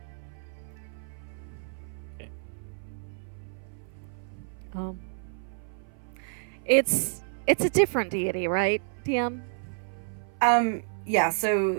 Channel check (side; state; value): left; silent; 56 dB below the other